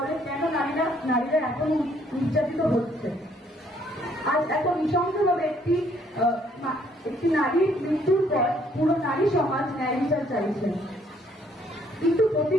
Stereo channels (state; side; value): normal; both; correlation 0.65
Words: কেন নারীরা এখন নির্যাতিত হচ্ছে? আজ এত নৃশংসভাবে একটি নারীর মৃত্যুর পর পুরো নারী সমাজ ন্যায় বিচার চাইছে, কিন্তু প্রতি